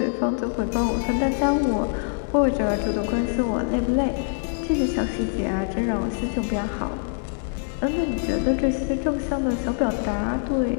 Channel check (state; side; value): silent; right; 62 dB below the other